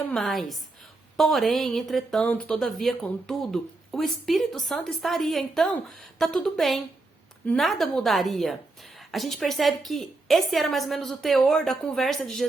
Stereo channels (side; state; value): left; quieter; 3.2 dB